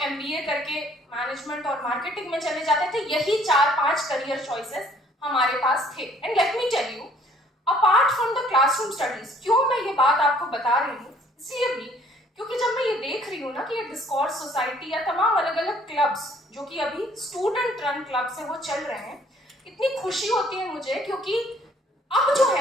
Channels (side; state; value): both; normal; correlation 0.59